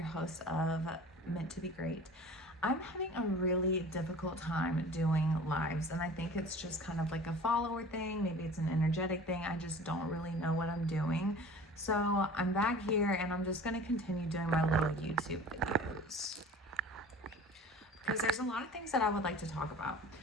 host of Meant to Be Great. I'm having a really difficult time doing lives, and I think it's just kind of like a follower thing. Maybe it's an energetic thing. I just don't really know what I'm doing. So I'm back here and I'm just going to continue doing my little YouTube videos because there's a lot of things that I would like to talk about.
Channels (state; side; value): normal; both; correlation 0.42